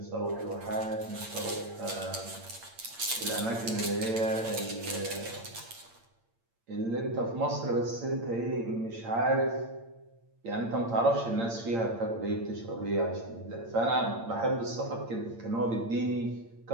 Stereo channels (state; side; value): late; left; 8.8 ms